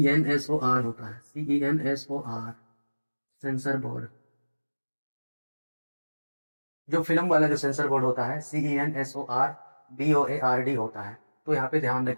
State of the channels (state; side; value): inverted; both; correlation -1.00